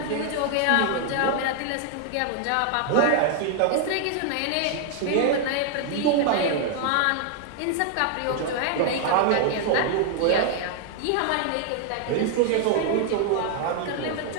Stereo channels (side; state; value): both; different; correlation 0.00